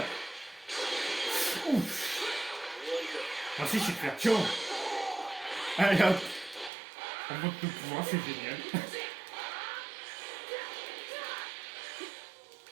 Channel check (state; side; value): drops out; left; at 6.7 s